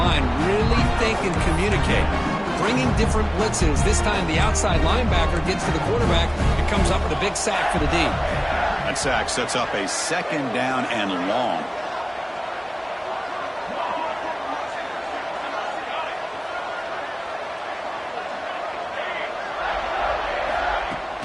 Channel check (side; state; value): both; identical; correlation 1.00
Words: really think and communicate. Bringing different blitzes. This time the outside linebacker gets to the quarterback and comes up with a big sack for the D. That sack sets up a second down and long.